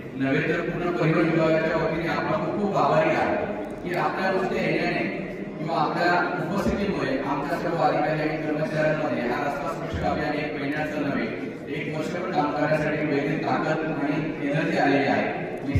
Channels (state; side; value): identical; both; correlation 1.00